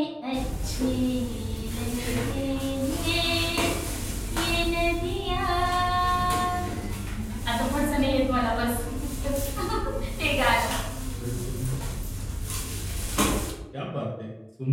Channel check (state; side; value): identical; both; correlation 1.00